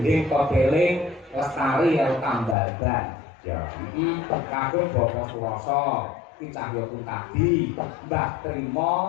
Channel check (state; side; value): drops out; right; at 2.6 s